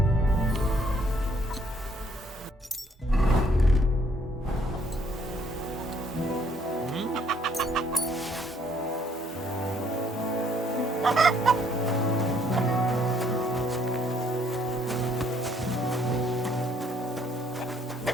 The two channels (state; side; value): normal; both; correlation 0.66